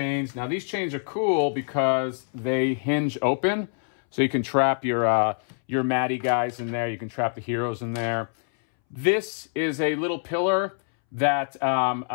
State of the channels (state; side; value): silent; right; 62 dB below the other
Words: Now these chains are cool because they hinge open. So you can trap your Maddie guys in there. You can trap the heroes in there. This is a little pillar that